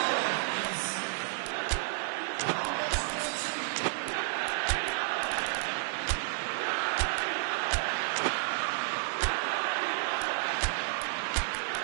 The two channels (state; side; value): silent; left; digital silence